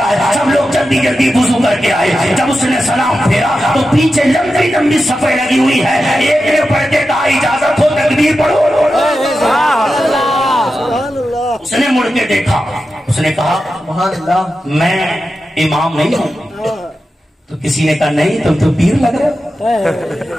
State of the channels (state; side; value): normal; both; correlation 0.91